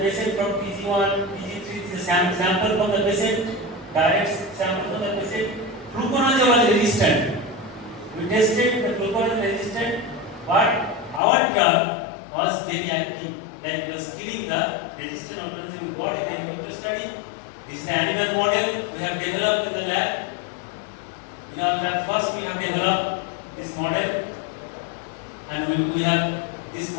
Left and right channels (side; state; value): right; drops out; at 11.2 s